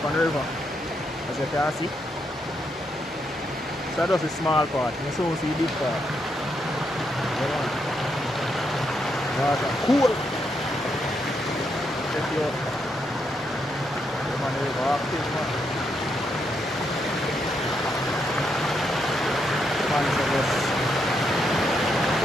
on the river, as you can see. So that's a small part. You soon see big part. Water cool. Check you out. The man river active, man. Man, so just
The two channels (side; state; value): both; normal; correlation 0.79